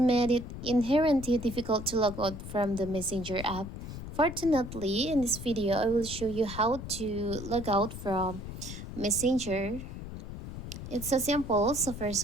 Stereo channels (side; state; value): left; noise; rumble, 9 dB below the sound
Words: it inherently difficult to log out from the Messenger app. Fortunately, in this video, I will show you how to log out from Messenger. It's so simple. So first